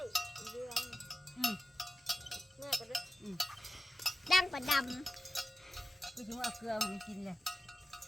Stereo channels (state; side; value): normal; both; correlation 0.93